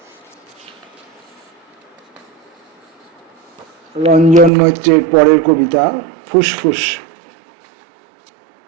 রঞ্জন মৈত্রের পরের কবিতা ফুসফুস।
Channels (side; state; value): left; drops out; at 4.5 s